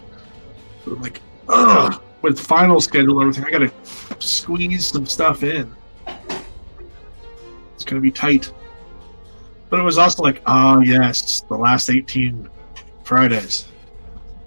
So I'm like, ugh, with the final schedule and everything, I got to squeeze some stuff in. It's going to be tight. But it was also like, oh, yes, the last 18 Fridays.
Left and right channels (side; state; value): both; inverted; correlation -1.00